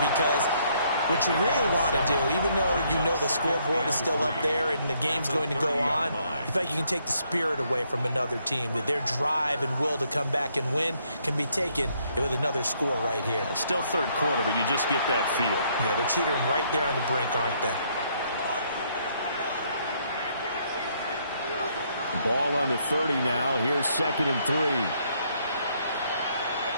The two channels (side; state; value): both; inverted; correlation -0.70